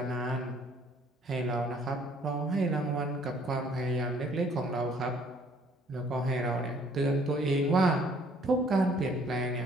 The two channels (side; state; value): both; normal; correlation 0.60